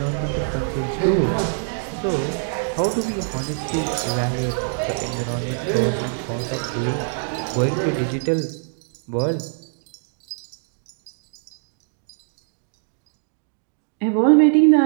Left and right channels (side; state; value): left; silent; digital silence